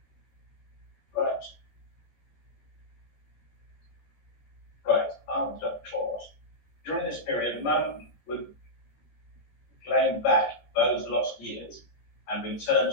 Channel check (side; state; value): right; late; 14 ms